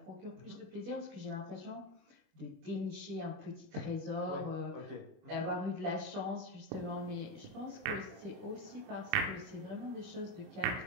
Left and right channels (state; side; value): late; left; 29 ms